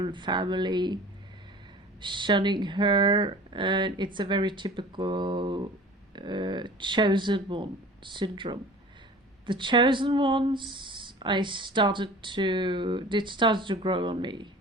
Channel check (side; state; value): both; normal; correlation 0.42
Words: family shunning her, and it's a very typical chosen one syndrome. The chosen ones, it started to grow on me,